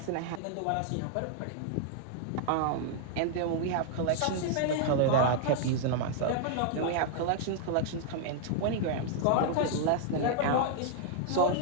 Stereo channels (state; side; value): different; both; correlation -0.01